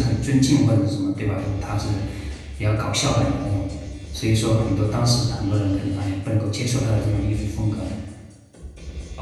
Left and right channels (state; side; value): identical; both; correlation 1.00